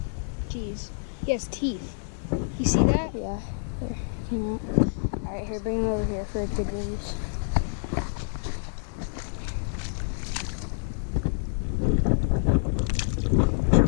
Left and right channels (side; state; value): right; silent; 59 dB below the other